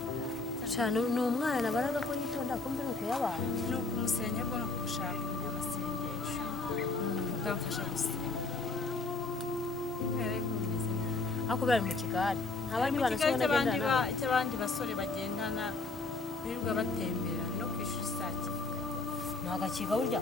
cyane ni umwana baraga ko yitonda kumbe nuko yabaye ni ukumusenya bwo no gushaka amasengesho ukamfasha gusenga kubera ko bimeze nabi ako bari mu kigari abandi bana se bagendana icy'abandi basore bagendana birirwa batembera no ku ishuri saa kenda ntabwo akiga burya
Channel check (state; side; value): quieter; right; 3.6 dB